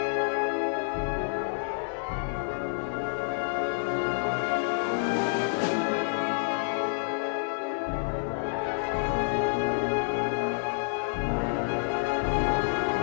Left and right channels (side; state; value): right; silent; digital silence